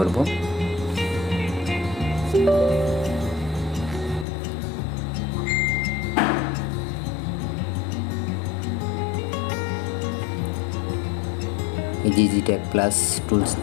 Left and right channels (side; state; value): right; drops out; at 4.2 s